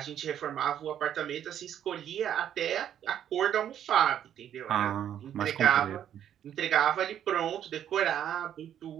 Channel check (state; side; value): quieter; left; 10.1 dB